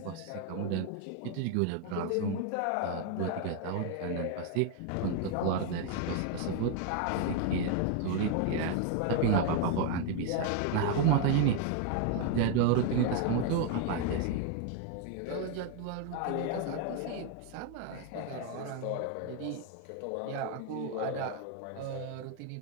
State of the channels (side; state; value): both; different; correlation 0.01